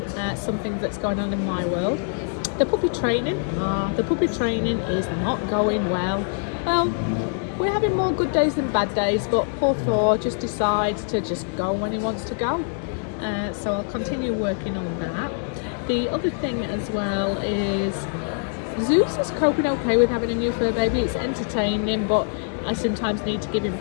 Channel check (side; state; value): right; silent; 57 dB below the other